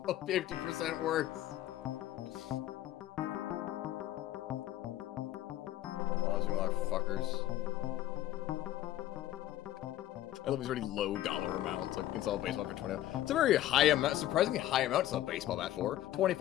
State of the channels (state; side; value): quieter; right; 13.8 dB